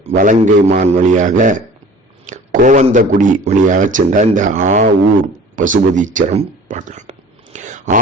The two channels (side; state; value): both; normal; correlation 0.45